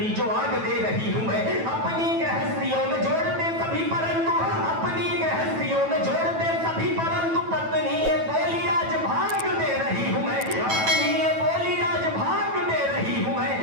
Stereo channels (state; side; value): late; left; 9.1 ms